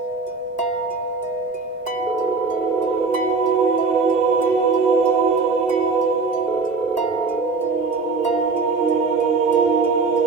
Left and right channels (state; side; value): quieter; left; 4.3 dB